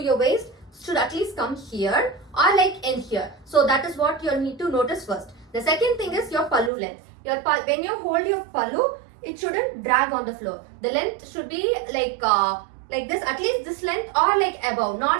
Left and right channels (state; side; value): drops out; left; at 6.7 s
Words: your waist should at least come here or like in here. So that is what you need to notice first. The second thing is your pallu length. When you hold your pallu, it shouldn't drag on the floor. The length should be like this, at least this length or like above,